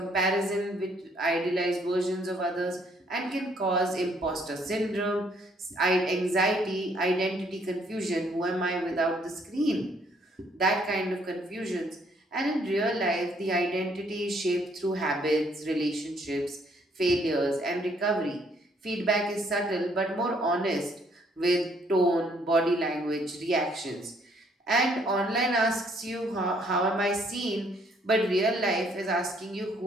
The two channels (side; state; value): both; normal; correlation 0.66